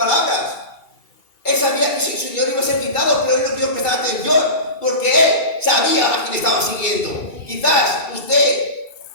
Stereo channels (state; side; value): late; right; 2.3 ms